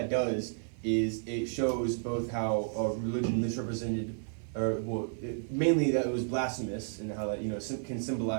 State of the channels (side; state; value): left; silent; 56 dB below the other